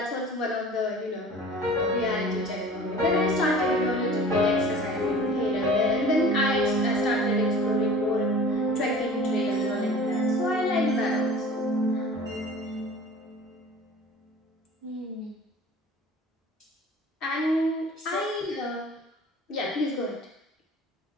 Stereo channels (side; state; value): both; normal; correlation 0.43